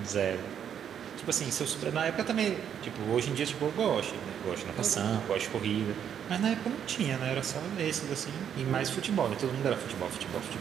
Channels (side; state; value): left; quieter; 8.8 dB